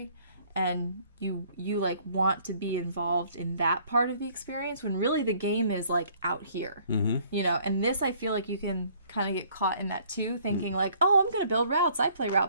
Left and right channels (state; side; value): inverted; both; correlation -0.59